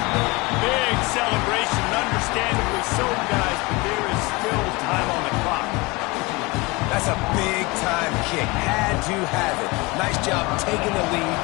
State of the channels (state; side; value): quieter; right; 24.6 dB